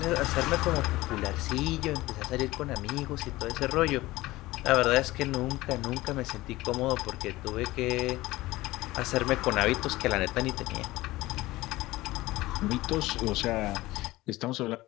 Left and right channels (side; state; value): right; quieter; 18.6 dB